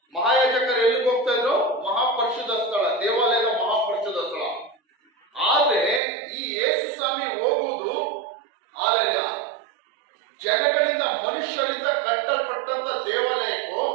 ಮಹಾಯಾಜಕರು ಎಲ್ಲಿಗೆ ಹೋಗ್ತಾ ಇದ್ರು? ಮಹಾಪರಿಶುದ್ಧ ಸ್ಥಳ, ದೇವಾಲಯದ ಮಹಾಪರಿಶುದ್ಧ ಸ್ಥಳ. ಆದ್ರೆ ಈ ಯೇಸು ಸ್ವಾಮಿ ಹೋಗುವುದು ಜನಗಳಿಂದ, ಮನುಷ್ಯರಿಂದ ಕಟ್ಟಲ್ಪಟ್ಟಂತ ದೇವಾಲಯಕ್ಕೂ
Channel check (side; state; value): left; drops out; at 6.0 s